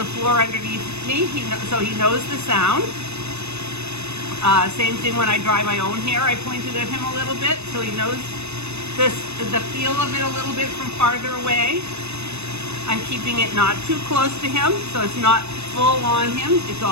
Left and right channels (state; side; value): late; left; 0.81 ms